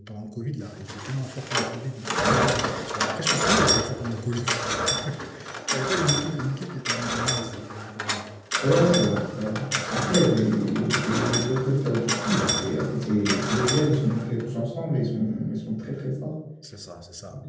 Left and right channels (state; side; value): identical; both; correlation 1.00